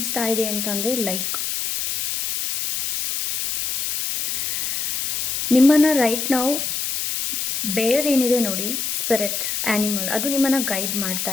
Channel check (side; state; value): left; noise; hiss, 2 dB below the sound